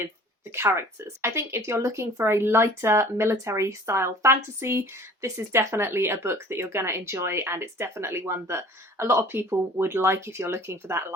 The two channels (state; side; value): normal; both; correlation 0.48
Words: the characters. I think if you're looking for a lighter military style fantasy, this is definitely a book that you're going to enjoy, and it's definitely one that a lot of people would like if you're looking for that